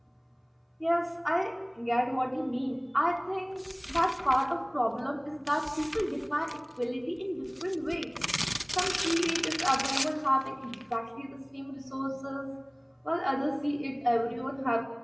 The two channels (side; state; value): both; identical; correlation 1.00